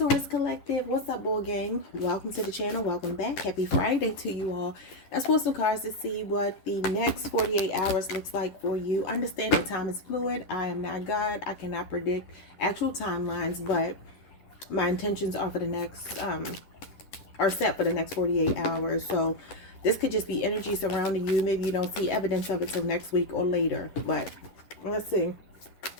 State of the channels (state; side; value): late; right; 10 ms